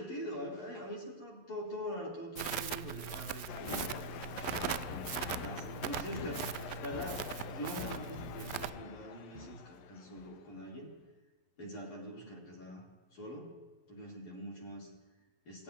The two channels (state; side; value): late; right; 11 ms